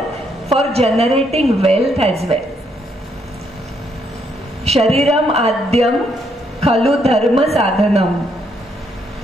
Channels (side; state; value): both; normal; correlation 0.74